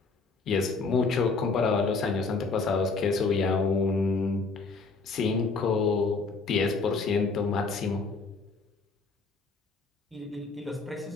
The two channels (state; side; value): quieter; right; 4.1 dB